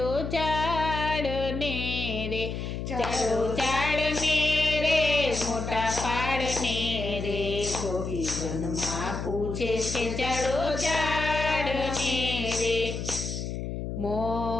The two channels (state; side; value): noise; left; hum, 5 dB below the sound